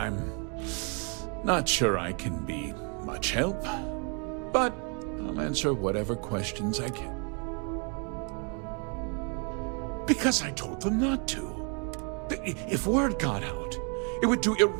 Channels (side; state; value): left; quieter; 37.0 dB